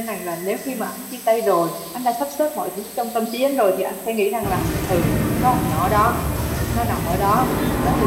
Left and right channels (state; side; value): identical; both; correlation 1.00